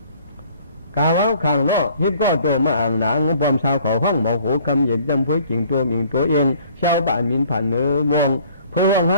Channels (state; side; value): inverted; both; correlation -0.56